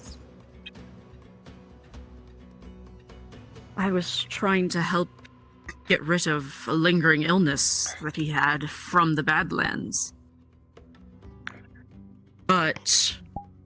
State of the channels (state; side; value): identical; both; correlation 1.00